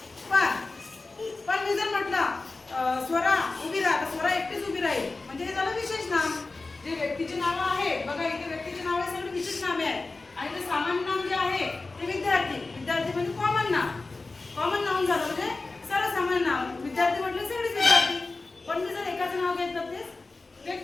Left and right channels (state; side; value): quieter; right; 3.5 dB